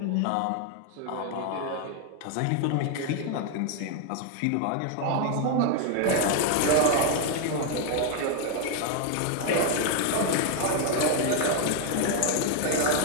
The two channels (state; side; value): different; both; correlation 0.00